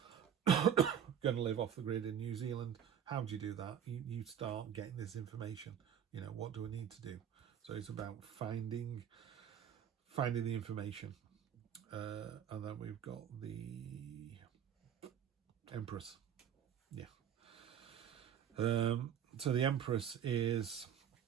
going to live off the grid in New Zealand. How do you do that? You start getting this information. You know, what do I need to do? So it's about finding the information. And then we've got the Empress. Yeah. So the Empress is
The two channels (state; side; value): quieter; left; 8.9 dB